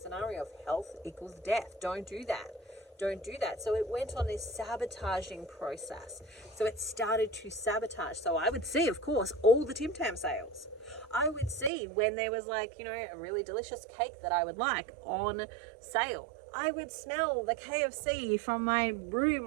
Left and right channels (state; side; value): drops out; left; at 11.7 s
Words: scenario of health equals death. Don't do that. Don't do that. So it went on this sabotaging process. So it started to sabotage. So I would see, of course, all the Tim Tam sales. I would see when there was like, you know, a really delicious cake that I would like on sale. I would smell the KFC from my